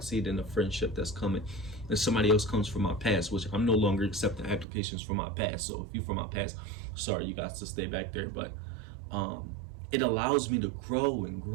it in a friendship that's coming, and somebody else comes from my past, which I'm no longer accepting applications from my past. So if you from my past, sorry, you guys to stay back there. But it allows me to grow and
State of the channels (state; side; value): drops out; left; at 4.7 s